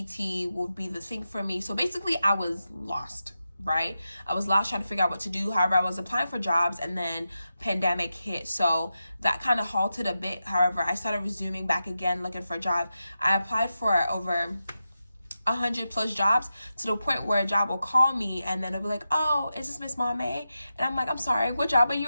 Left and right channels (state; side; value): inverted; both; correlation -0.90